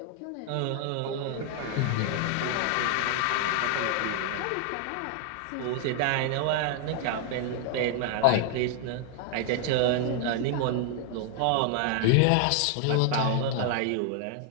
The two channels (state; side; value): different; both; correlation 0.00